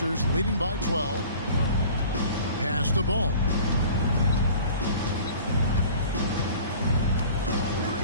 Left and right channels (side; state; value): both; inverted; correlation -0.45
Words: leading by 12. Pass the ball.